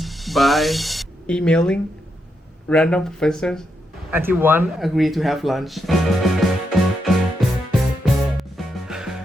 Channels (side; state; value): both; normal; correlation 0.82